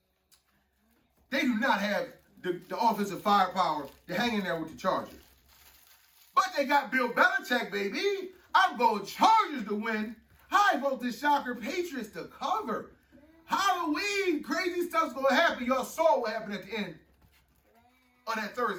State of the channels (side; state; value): both; identical; correlation 1.00